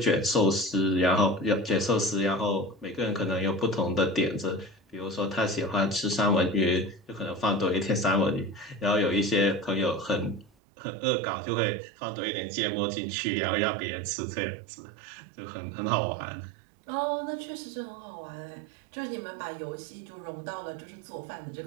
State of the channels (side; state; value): left; drops out; at 10.5 s